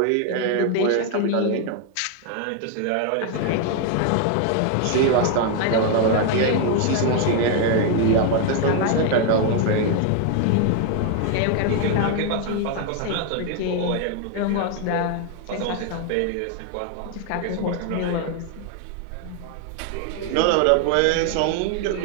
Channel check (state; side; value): different; both; correlation 0.01